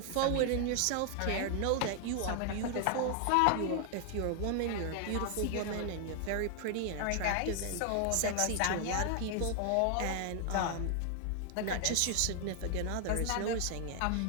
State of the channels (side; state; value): both; different; correlation 0.00